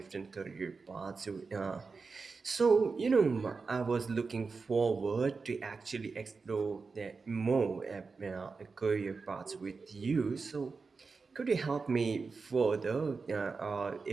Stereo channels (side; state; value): left; quieter; 4.5 dB